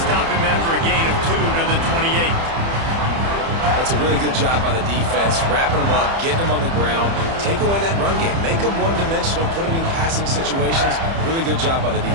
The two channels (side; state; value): left; late; 30 ms